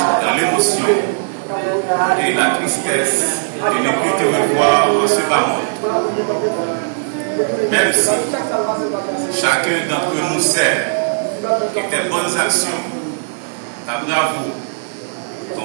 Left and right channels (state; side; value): silent; left; digital silence